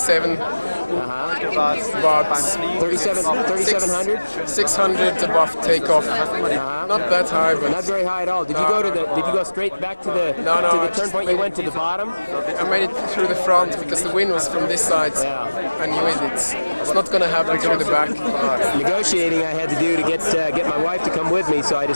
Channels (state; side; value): inverted; both; correlation -1.00